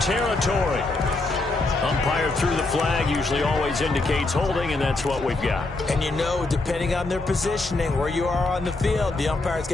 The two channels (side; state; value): right; quieter; 3.1 dB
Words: territory. Umpire threw the flag, usually always indicates holding, and that's what we've got. And you know, depending on their positioning, where you are on the field, the umpires